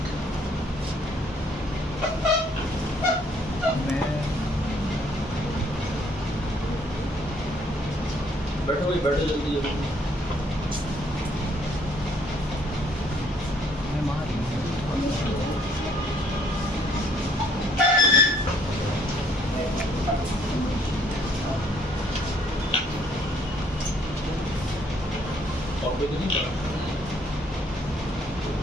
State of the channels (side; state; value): both; normal; correlation 0.64